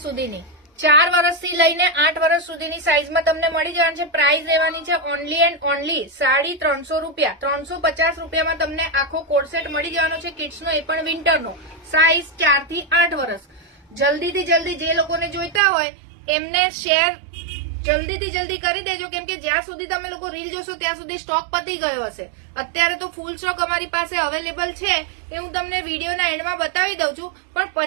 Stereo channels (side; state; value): left; drops out; at 15.6 s